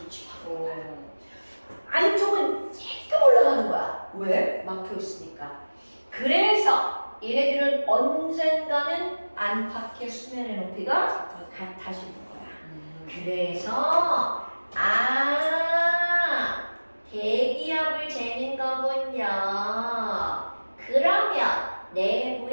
안쪽은 조금 올라가는 거야. 왜? 막혀 있으니까. 그래서 얘네들은 언젠가는 안팎의 수면의 높이가 같아지는 거야. 그래서 대기압을 재는 거군요. 그러면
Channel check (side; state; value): both; inverted; correlation -1.00